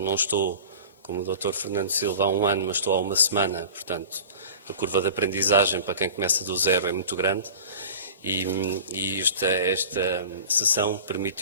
não estou como o Dr. Fernando Silva há um ano, mas estou há uma semana, portanto, a curva de aprendizagem para quem começa do zero é muito grande e esta sessão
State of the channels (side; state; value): both; inverted; correlation -0.39